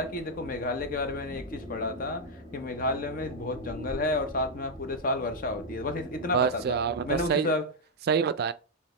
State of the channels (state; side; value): normal; both; correlation -0.01